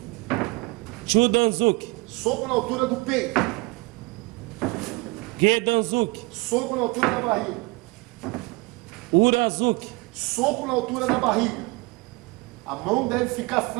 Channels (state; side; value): quieter; left; 24.8 dB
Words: Chudanzuki. Soco na altura do peito. Gedanzuki. Soco na altura da barriga. Urazuki. Soco na altura da barriga. A mão deve ficar